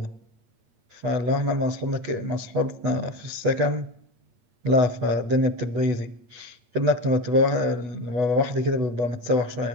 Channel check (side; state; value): left; late; 8.7 ms